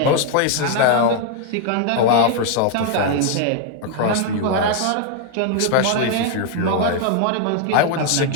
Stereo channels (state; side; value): different; both; correlation 0.00